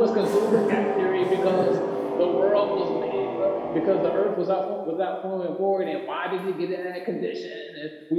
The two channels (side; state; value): both; identical; correlation 1.00